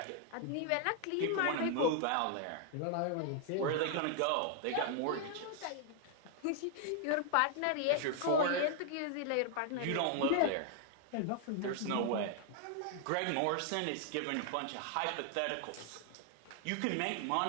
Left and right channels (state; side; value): different; both; correlation 0.00